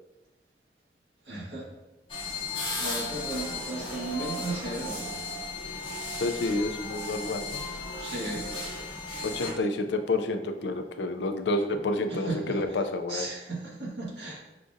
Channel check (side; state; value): both; normal; correlation 0.29